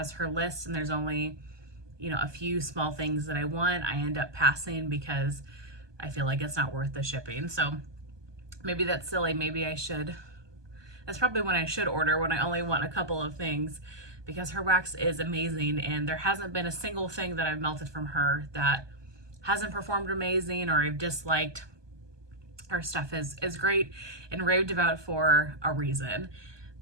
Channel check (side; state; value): left; late; 1.2 ms